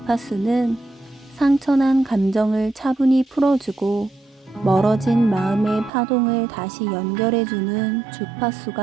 상처난 감정을 차분히 풀어주고 멀어진 마음의 파동을 다시 연결해주는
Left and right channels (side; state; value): left; drops out; at 5.9 s